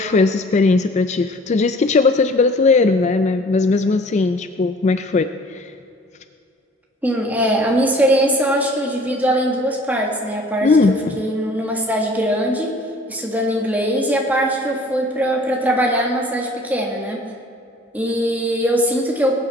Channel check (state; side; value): normal; both; correlation 0.51